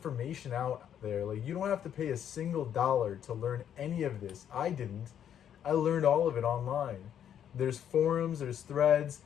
out there. Like, you don't have to pay a single dollar to learn any of this. I didn't. I learned all of it online. There's forums, there's threads,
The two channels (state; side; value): quieter; right; 9.5 dB